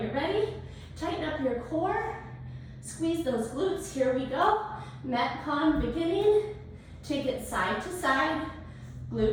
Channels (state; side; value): identical; both; correlation 1.00